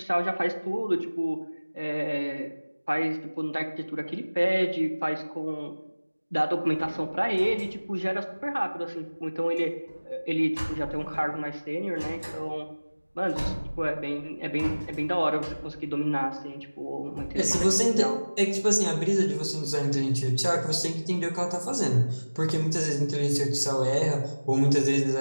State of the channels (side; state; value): both; inverted; correlation -1.00